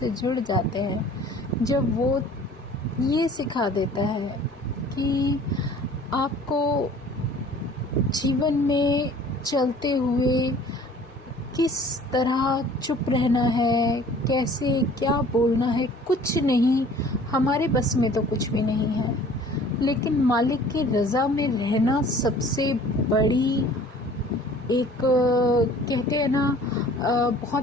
जुड़ जाते हैं, जब वो ये सिखा देता है कि आपको जीवन में चलते हुए किस तरह चुप रहना है, कैसे क्या बोलना है, कुछ नहीं, हमारे बस में तो कुछ भी नहीं है। लेकिन मालिक की रज़ा में रहना सबसे बड़ी एक कहते हैं ना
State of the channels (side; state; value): both; normal; correlation 0.50